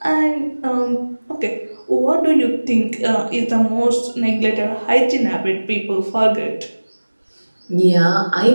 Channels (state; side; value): inverted; both; correlation -1.00